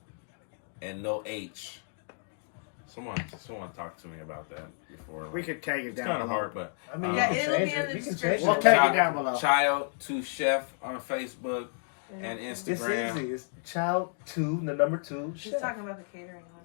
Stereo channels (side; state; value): right; silent; digital silence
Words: and no H. Someone talk to me about that before. We could take it It's down. kind of below. hard, but I mean, Yeah, you can it'll change be in it. the You can change description. We'll it. take it down below. Child to Chef on Facebook and It's Instagram. easy. It's child 2, the number 2. She's talking about the catering one.